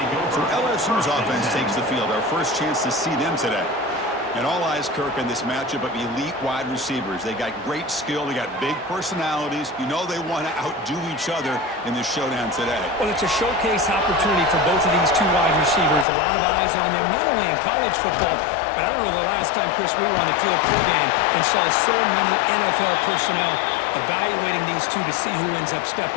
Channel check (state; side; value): drops out; right; at 16.1 s